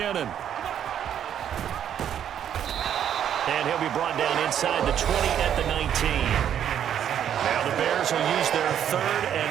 And he'll be brought down inside the 20 at the 19. Now the Bears will use their 3rd and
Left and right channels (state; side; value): quieter; left; 9.6 dB